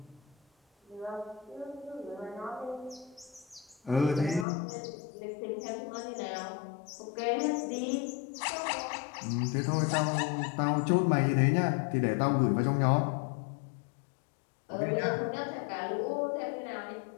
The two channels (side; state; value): right; drops out; at 4.5 s